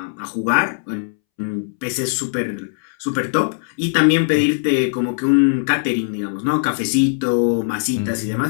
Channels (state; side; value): silent; right; 65 dB below the other